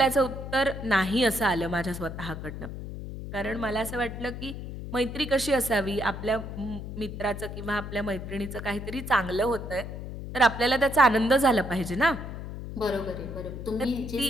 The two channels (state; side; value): noise; left; hum, 8 dB below the sound